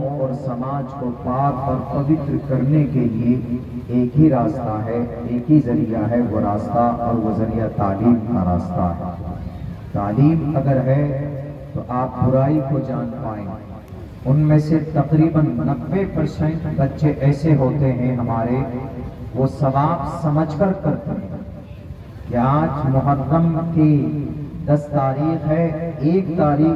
اور سماج کو پاک اور پوتر کرنے کے لیے ایک ہی راستہ ہے، ایک ہی ذریعہ ہے، وہ راستہ اور وہ ذریعہ تعلیم کا راستہ ہے۔ تعلیم اگر ہے تو آپ برائی کو جان پائیں۔ ان میں سے تقریباً 90% بچے ایسے ہوتے ہیں ہمارے، وہ ثواب سمجھ کر کرتے ہیں کہ آج محرم کی 10 تاریخ ہے، 1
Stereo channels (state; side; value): identical; both; correlation 1.00